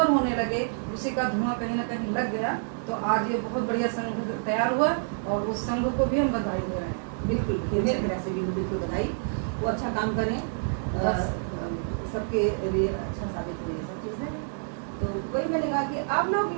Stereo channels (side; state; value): left; silent; digital silence